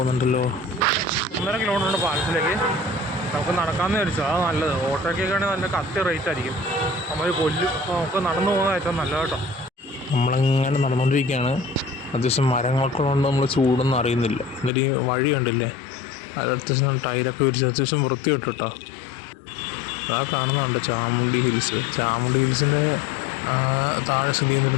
1.5 കിലോമീറ്ററുണ്ട് പാലത്തിലേക്ക്. നമുക്ക് നടക്കാമെന്ന് വിചാരിച്ചു. അതാണ് നല്ലത്. ഓട്ടോയ്ക്കൊക്കെ ആണെങ്കിൽ നല്ല കത്തി റേറ്റ് ആയിരിക്കും. നമ്മൾ കൊല്ലും. അപ്പോൾ നമുക്ക് നടന്നു പോകുന്നത് ഏറ്റവും നല്ലത് കേട്ടോ. നമ്മളിങ്ങനെ നടന്നുകൊണ്ടിരിക്കുകയാണ്. അത്യാവശ്യം മരങ്ങൾക്കുള്ളതുകൊണ്ട് നമ്മൾ ചൂടൊന്നും അറിയുന്നില്ല. എന്നിട്ട് ഈ വഴി കണ്ടില്ലേ, അത് അത്യാവശ്യം ടയറൊക്കെ വിരിച്ച് അത്യാവശ്യം വൃത്തി കേട്ടോ. ആ കാണുന്നുണ്ട് ചാമുണ്ഡി ഹിൽസ്. ചാമുണ്ഡി ഹിൽസിൻ്റെ താഴെ സ്ഥിതി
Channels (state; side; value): drops out; right; at 14.7 s